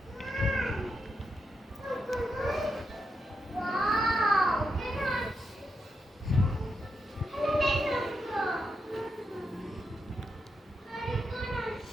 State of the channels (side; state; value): both; normal; correlation 0.84